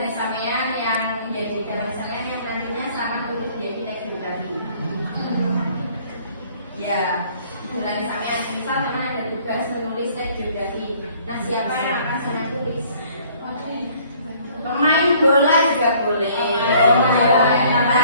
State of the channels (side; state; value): both; inverted; correlation -0.58